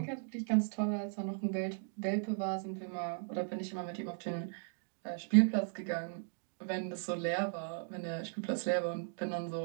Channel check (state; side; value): silent; left; 53 dB below the other